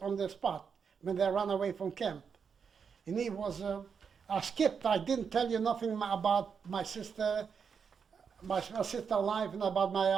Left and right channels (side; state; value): left; quieter; 6.4 dB